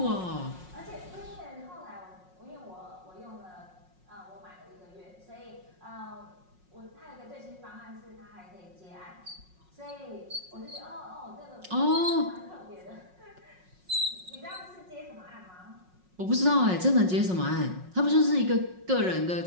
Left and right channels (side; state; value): left; late; 5.5 ms